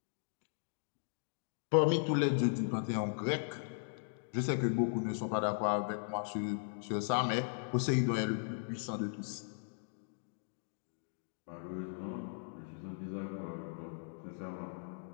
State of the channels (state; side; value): silent; right; digital silence